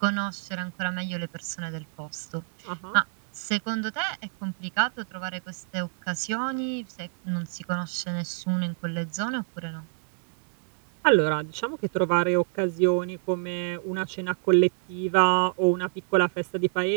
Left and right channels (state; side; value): silent; left; digital silence